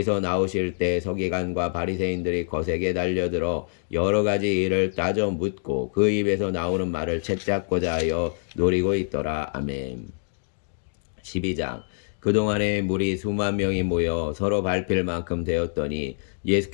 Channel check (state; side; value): silent; right; digital silence